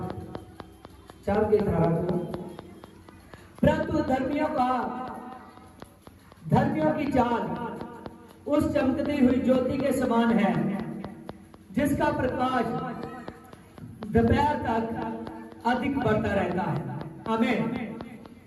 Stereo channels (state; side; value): identical; both; correlation 1.00